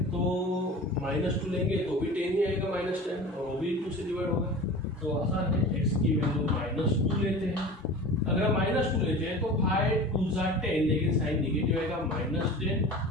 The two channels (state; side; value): normal; both; correlation 0.36